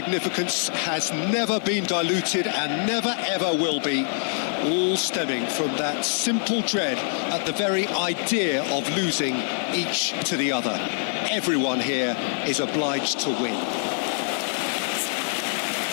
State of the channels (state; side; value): silent; right; digital silence